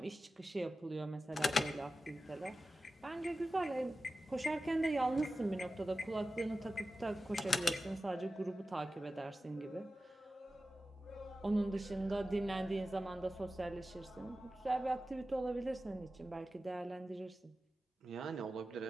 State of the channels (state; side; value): normal; both; correlation 0.94